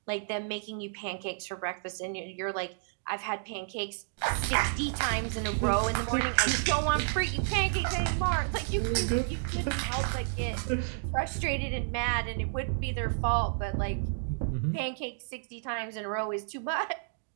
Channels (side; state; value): left; silent; digital silence